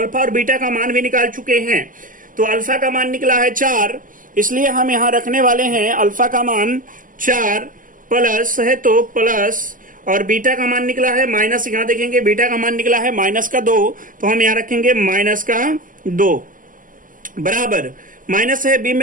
और बीटा का मान भी निकाल चुके हैं। तो अल्फा का मान निकला है 4, इसलिए हम यहां रखने वाले हैं अल्फा का मान 4 प्लस है तो प्लस, और बीटा का मान निकला है माइनस, यहां देखेंगे बीटा का मान निकला है माइनस का 2, तो हम यहां रखेंगे माइनस का 2 बराबर माइनस है बी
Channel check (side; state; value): left; late; 0.39 ms